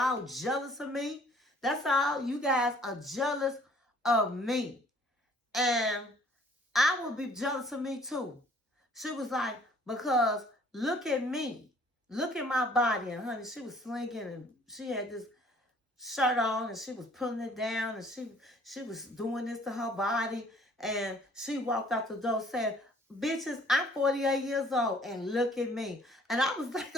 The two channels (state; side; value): normal; both; correlation 0.57